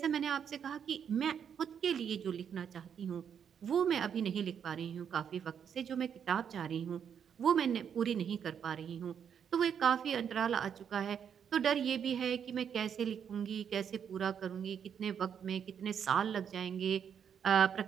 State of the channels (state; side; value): quieter; left; 7.9 dB